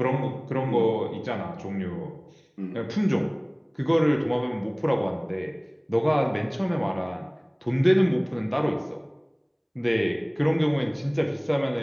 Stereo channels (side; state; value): both; identical; correlation 1.00